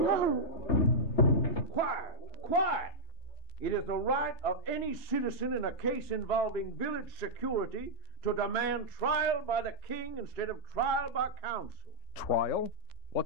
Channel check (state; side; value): late; right; 3.3 ms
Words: Quiet, quiet. It is the right of any citizen in a case involving village security to demand trial by the king instead of trial by council. Trial?